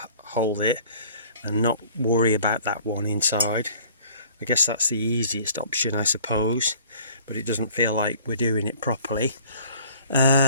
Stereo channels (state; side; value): inverted; both; correlation -0.51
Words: hold it and not worry about that one inside. I guess that's the easiest option, I suppose, but it doesn't feel like we're doing it properly.